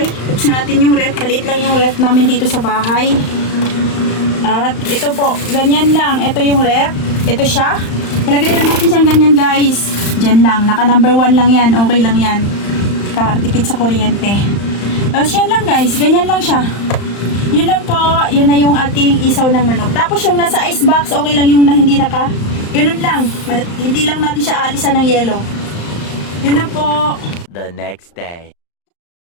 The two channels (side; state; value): right; late; 35 ms